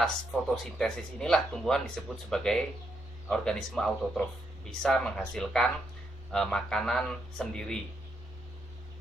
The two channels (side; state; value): both; normal; correlation 0.79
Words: fotosintesis inilah tumbuhan disebut sebagai organisme autotrof, bisa menghasilkan makanan sendiri.